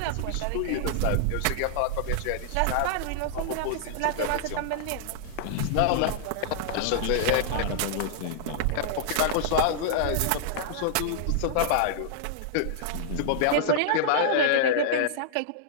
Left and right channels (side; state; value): both; different; correlation -0.01